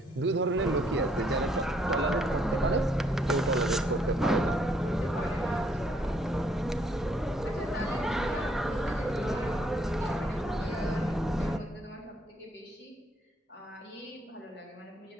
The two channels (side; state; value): both; normal; correlation 0.68